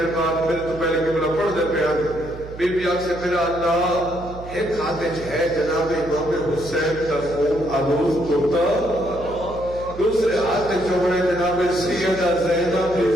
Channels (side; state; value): right; noise; hum, 14 dB below the sound